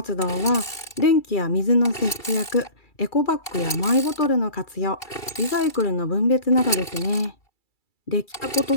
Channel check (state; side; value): late; right; 2.3 ms